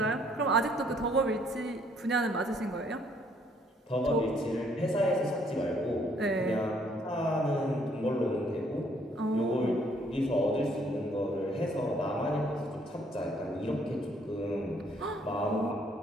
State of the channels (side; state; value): both; normal; correlation 0.66